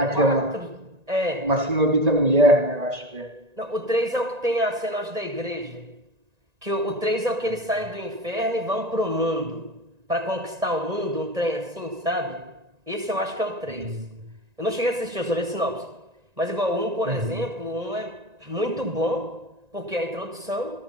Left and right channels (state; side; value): late; left; 1.9 ms